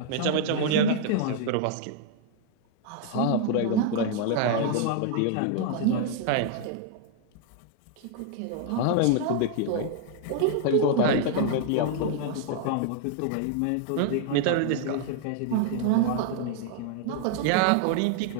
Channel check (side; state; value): both; different; correlation 0.00